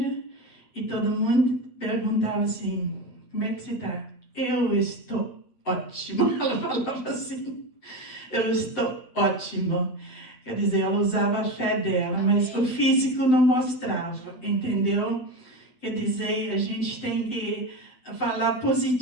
e todo mundo perguntava assim, como é que você está? Eu estou ótima, ela falava assim, eu estou ótimo. Quer dizer, ela usava a fé dela, mas o físico não mostrava, entendeu? Quer dizer, a gente tem que falar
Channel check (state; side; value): late; right; 7.8 ms